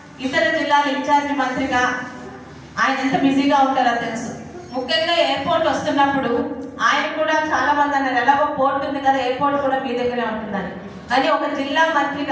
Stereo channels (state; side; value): identical; both; correlation 1.00